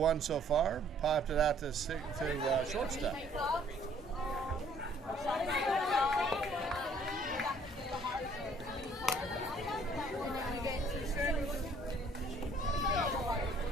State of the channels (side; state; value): both; normal; correlation 0.60